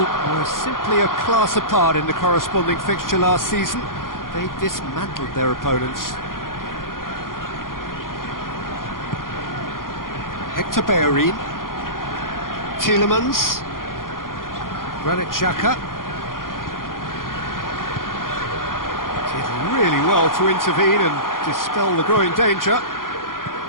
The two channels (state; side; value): late; right; 0.91 ms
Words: simply a class apart in the corresponding fixture last season. They dismantled their opponents. Hector Bellerin, Tielemans, Granit Xhaka. Did really well to intervene and dispel the growing danger.